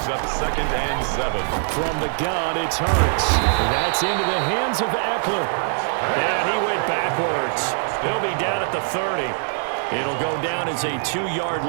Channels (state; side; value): silent; left; 64 dB below the other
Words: up 2nd and 7. From the gun, it's Hurts. That's into the hands of Eckler. And he went backwards. He'll be down at the 30. It'll go down as a 2-yard